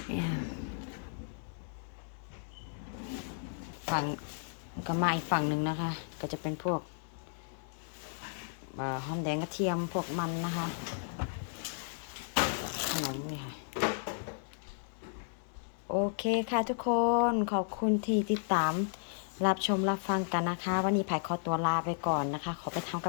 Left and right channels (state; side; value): silent; right; digital silence